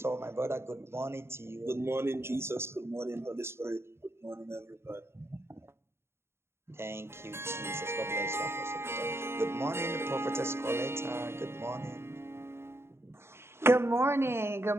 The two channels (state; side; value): late; left; 0.12 ms